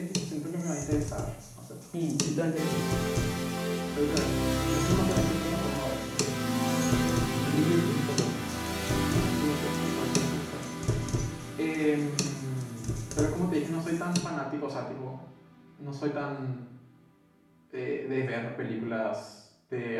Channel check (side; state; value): both; identical; correlation 1.00